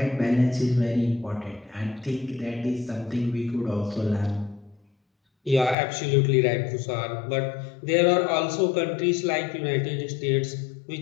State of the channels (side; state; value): right; drops out; at 5.8 s